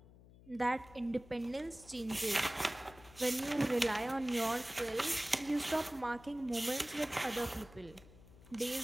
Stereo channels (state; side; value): noise; left; hum, 21 dB below the sound